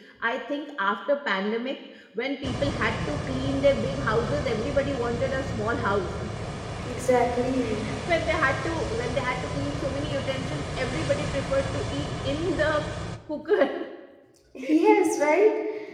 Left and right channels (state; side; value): identical; both; correlation 1.00